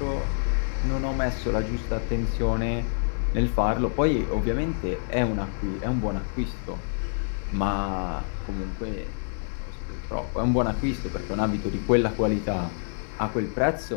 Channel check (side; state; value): right; silent; digital silence